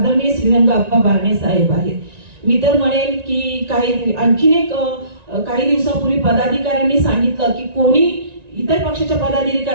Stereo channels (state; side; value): late; left; 1.9 ms